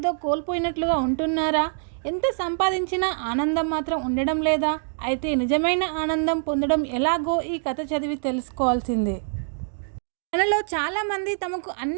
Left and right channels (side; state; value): left; silent; digital silence